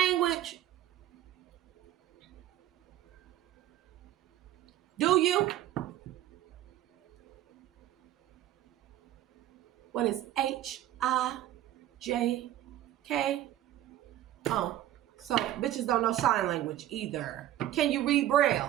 Do you? What is H-I-J-K? Oh, so bitches don't know sign language either. Can you read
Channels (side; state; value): left; quieter; 13.1 dB